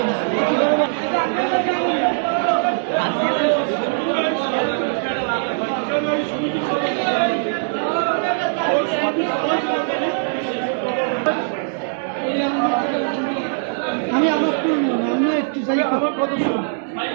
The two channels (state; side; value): silent; left; digital silence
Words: আমি আমার আমি একটু যাই আমার কত